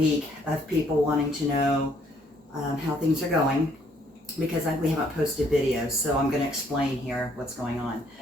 of people wanting to know how things are going because we haven't posted videos, so I'm going to explain here what's going on.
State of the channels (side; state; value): both; normal; correlation 0.66